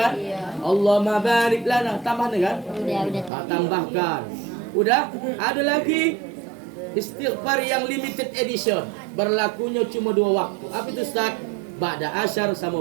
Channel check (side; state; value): left; drops out; at 3.3 s